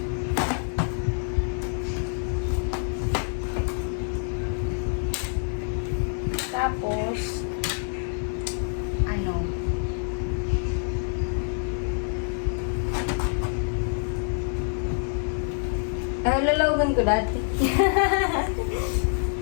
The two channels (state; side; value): silent; right; 61 dB below the other